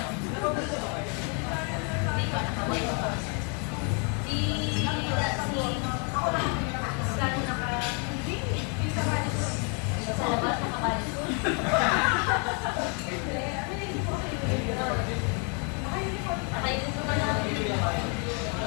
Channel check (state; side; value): quieter; right; 37.5 dB